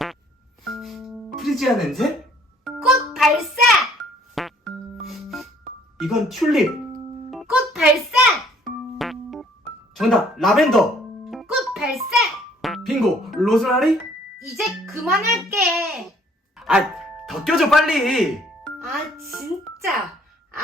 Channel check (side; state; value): both; normal; correlation 0.60